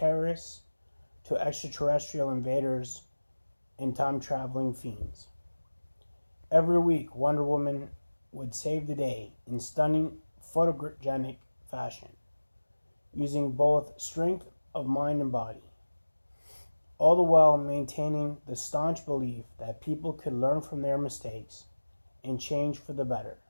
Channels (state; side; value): inverted; both; correlation -1.00